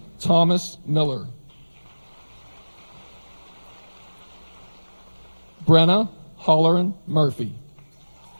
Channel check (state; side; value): inverted; both; correlation -1.00